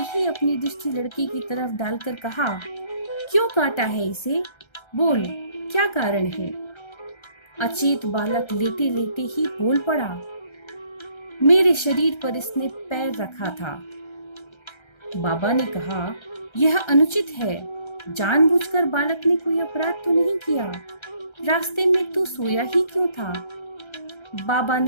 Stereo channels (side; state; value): right; late; 1.3 ms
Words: ही अपनी दृष्टि लड़के की तरफ डालकर कहा, क्यों काटा है इसे? बोल, क्या कारण है? अचेत बालक लेटे लेटे ही बोल पड़ा, मेरे शरीर पर इसने पैर रखा था। बाबा ने कहा, यह अनुचित है। जानबूझकर बालक ने कोई अपराध तो नहीं किया। रास्ते में तू सोया ही क्यों था? बाबा